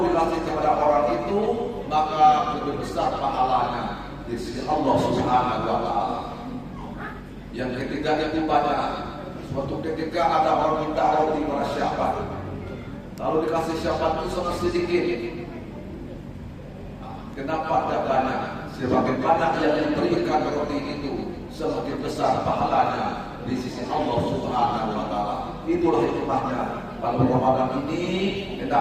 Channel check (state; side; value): identical; both; correlation 1.00